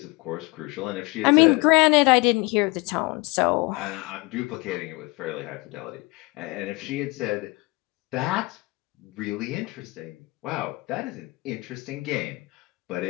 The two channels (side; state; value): right; quieter; 24.7 dB